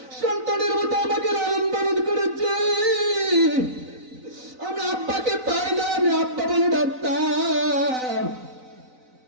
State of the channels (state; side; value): late; left; 3.9 ms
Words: সন্তানের মতো আমাকে লালন পালন করেছে। আমি আব্বাকে পাই না, আমি আব্বা বলে ডাকতাম।